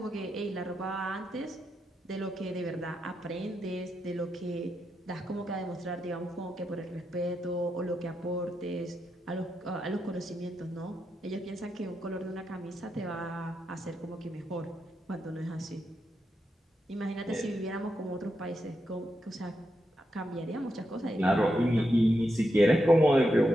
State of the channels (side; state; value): both; normal; correlation 0.85